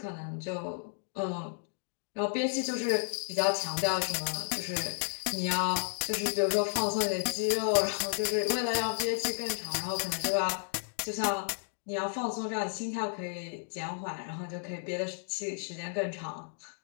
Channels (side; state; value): right; silent; 56 dB below the other